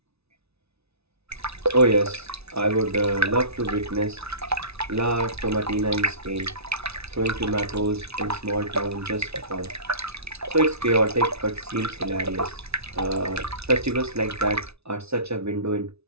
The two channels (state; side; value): late; left; 0.80 ms